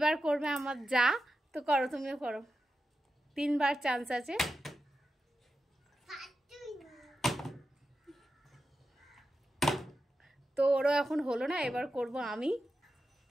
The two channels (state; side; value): normal; both; correlation 0.90